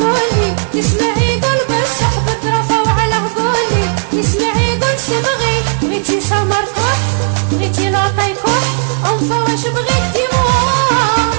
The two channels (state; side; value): silent; left; digital silence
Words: تسمعي يقول بالصح بترفوا على هقولي تسمعي يقول